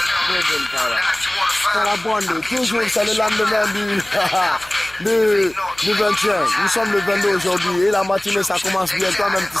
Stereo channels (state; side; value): noise; left; hum, 25 dB below the sound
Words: toujours c'est le lendemain du 21. Nous sommes le 22 aujourd'hui et la matinée ça commence bien, toi-même tu